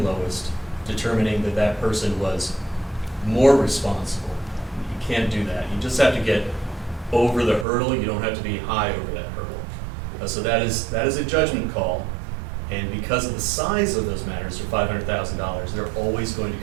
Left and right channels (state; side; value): drops out; left; at 7.7 s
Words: lowest, determining that that person was more responsible. You can't do that. You just have to get over the hurdle. You don't have to be high over that hurdle. So that is a judgment call, and because of the size of those matters, for $500,000, they're always going to